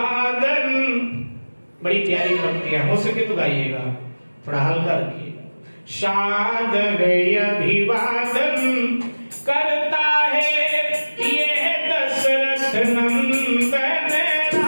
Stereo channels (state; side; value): inverted; both; correlation -1.00